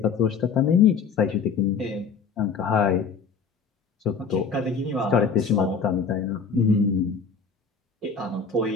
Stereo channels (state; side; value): quieter; right; 5.6 dB